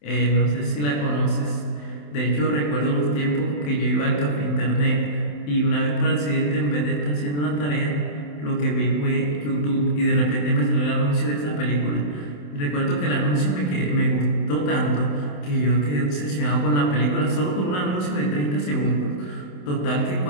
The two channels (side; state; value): right; late; 27 ms